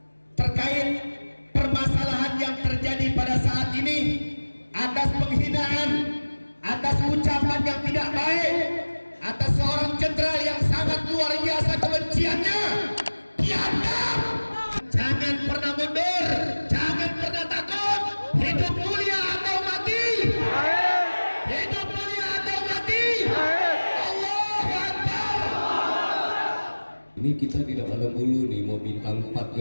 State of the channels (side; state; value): both; inverted; correlation -1.00